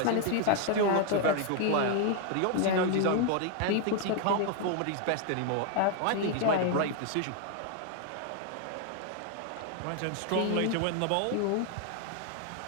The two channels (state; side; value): different; both; correlation 0.00